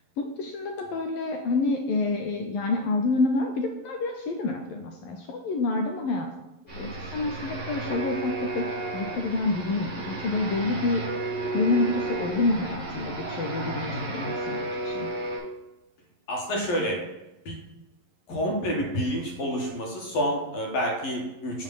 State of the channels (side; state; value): right; late; 11 ms